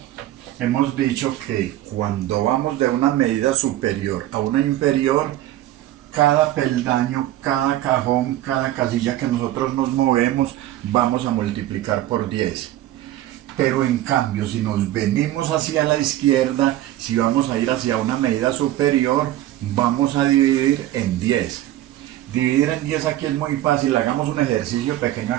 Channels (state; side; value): quieter; left; 14.2 dB